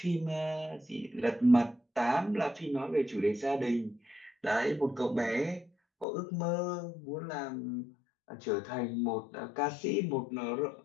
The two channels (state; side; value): drops out; right; at 6.1 s